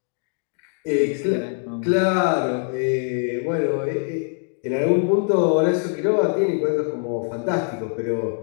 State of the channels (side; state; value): right; silent; 56 dB below the other